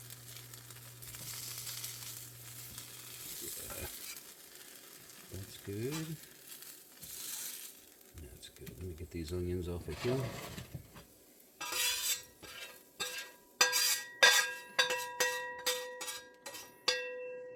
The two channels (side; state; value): both; identical; correlation 1.00